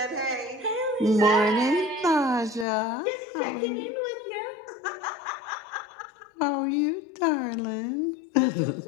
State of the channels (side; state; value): right; drops out; at 2.7 s